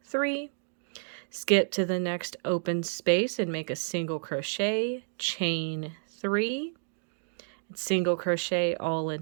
3. Skip to the next open space and make a single crochet, chain 3, and single crochet all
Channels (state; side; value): silent; left; digital silence